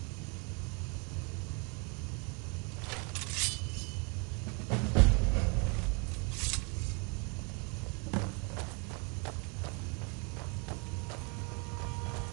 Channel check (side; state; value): left; quieter; 33.7 dB